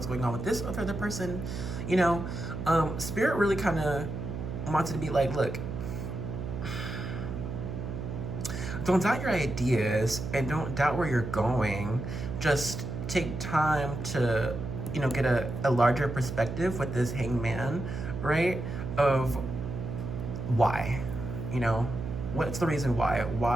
going on with this other person? You know, Spirit really kind of wanted to be like, look, don't doubt your ideas and don't doubt where you're going. Just take time to, get a larger perspective with this hangman, right? Of why, what's the reason why?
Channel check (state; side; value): noise; right; hum, 5 dB below the sound